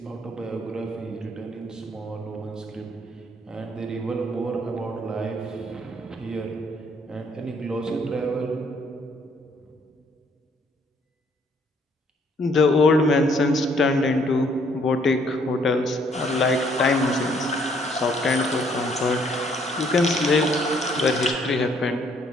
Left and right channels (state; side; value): normal; both; correlation 0.66